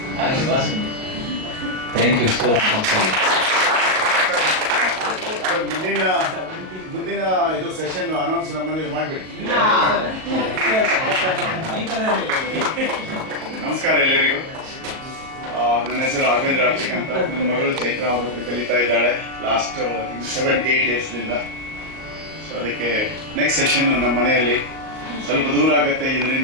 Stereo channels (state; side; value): late; left; 38 ms